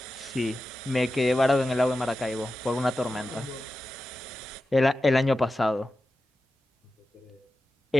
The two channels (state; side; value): normal; both; correlation 0.92